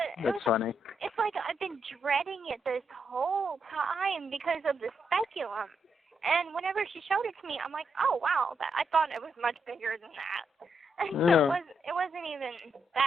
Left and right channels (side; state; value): both; normal; correlation 0.80